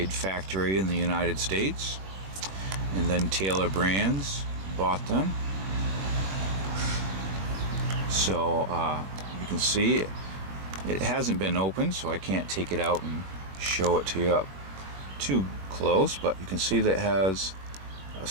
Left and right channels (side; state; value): left; late; 21 ms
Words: factory in the United States, and then Taylor Brands bought them. So you can see it hasn't been opened, so I can't take it out and show it to you up too close, but you can see that it has a